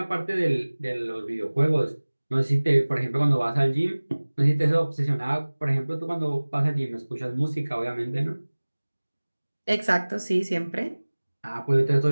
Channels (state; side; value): inverted; both; correlation -1.00